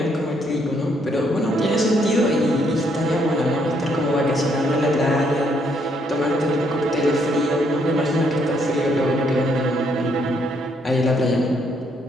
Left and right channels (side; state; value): both; normal; correlation 0.71